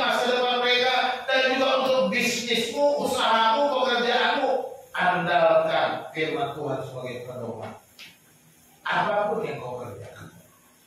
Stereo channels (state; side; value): identical; both; correlation 1.00